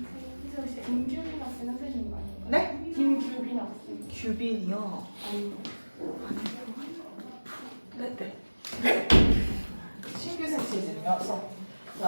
김규빈 학생 선생님 아닌가요? 네? 김규빈 학생. 규빈이요. 네. 신규생 체제이어서.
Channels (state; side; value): inverted; both; correlation -1.00